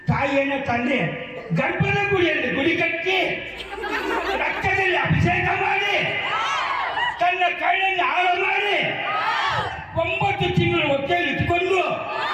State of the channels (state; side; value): identical; both; correlation 1.00